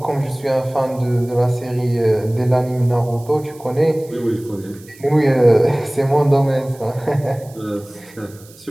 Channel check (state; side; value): noise; right; hiss, 24 dB below the sound